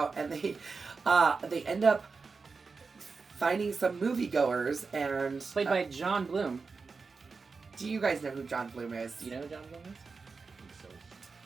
and they end up finding some moviegoers and played by John Bloom. Do you guys know who John Bloom is? Do you know who John Bloom is?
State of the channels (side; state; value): left; quieter; 4.6 dB